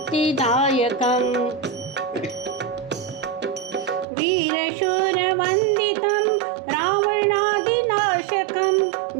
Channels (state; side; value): drops out; left; at 4.0 s